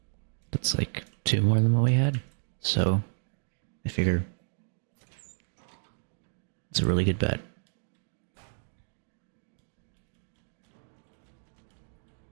That's like 2 more than what we had, so I figure it's a really good bet.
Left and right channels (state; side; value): silent; left; 57 dB below the other